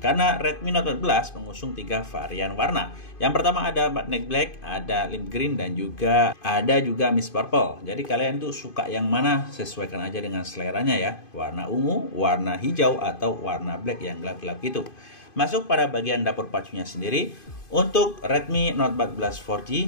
Karena Redmi Note 14 mengusung 3 varian warna. Yang pertama ada Magnetic Black, ada Lime Green, dan juga ada Mist Purple. Jadi kalian tuh suka yang mana, sesuaikan aja dengan seleranya ya. Warna ungu, warna hijau, atau warna black yang gelap-gelap gitu. Masuk pada bagian dapur pacunya sendiri. Untuk Redmi Note 14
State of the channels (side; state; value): right; late; 2.5 ms